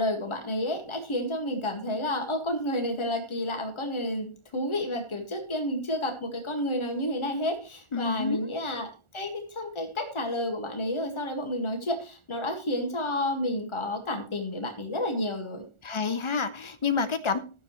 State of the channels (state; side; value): late; right; 1.4 ms